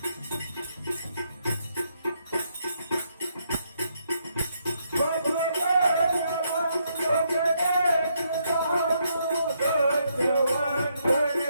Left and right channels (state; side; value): inverted; both; correlation -0.76